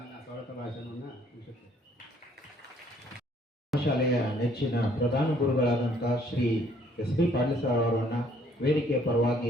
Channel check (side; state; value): both; normal; correlation 0.62